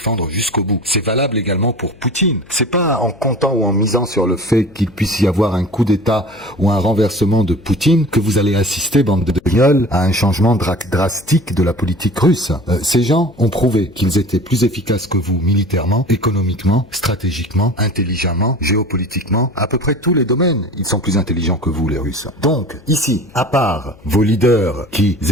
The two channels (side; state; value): left; noise; hum, 25 dB below the sound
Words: jusqu'au bout. C'est valable également pour Poutine. C'est pas en comptant ou en misant sur le fait qu'il puisse y avoir un coup d'État ou un renversement de Poutine que vous allez assister, bande de guignols, à un changement drastique de la politique russe. Ces gens ont prouvé qu'ils étaient plus efficaces que vous militairement, économiquement, stratégiquement, intelligemment, géopolitiquement, à peu près tous les domaines. Ils sont plus intelligents que vous, les Russes. Donc, ici, à part vos leaders qui